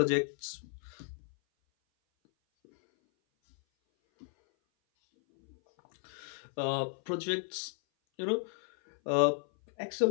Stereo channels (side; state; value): right; silent; 55 dB below the other